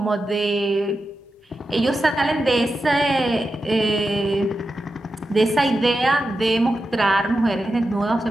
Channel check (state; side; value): normal; both; correlation 0.90